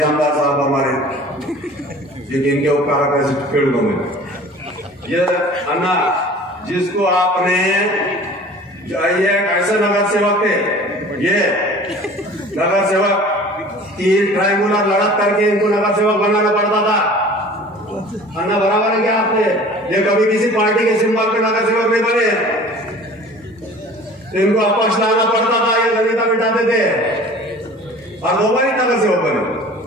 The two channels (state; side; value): normal; both; correlation 0.44